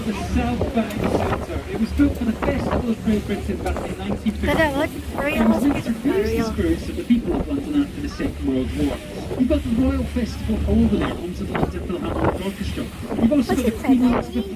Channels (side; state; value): both; identical; correlation 1.00